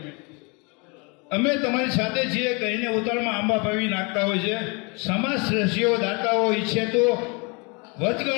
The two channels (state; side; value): quieter; right; 30.7 dB